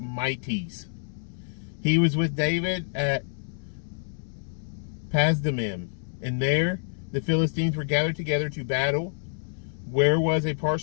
He was with David at Pasdamim, and there the Philistines were gathered together to battle, where was a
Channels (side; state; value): right; silent; digital silence